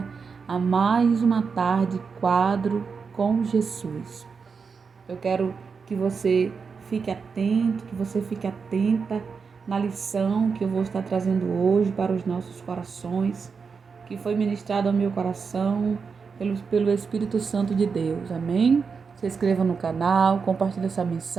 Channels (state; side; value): quieter; left; 5.4 dB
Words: a mais uma tarde quadro com Jesus. Eu quero que você fique atento, que você fique atenta na lição que eu vou estar trazendo hoje para os nossos corações, que foi ministrado ao meu coração pelo Espírito Santo de Deus. Amém? Se inscreva no canal, compartilhe essa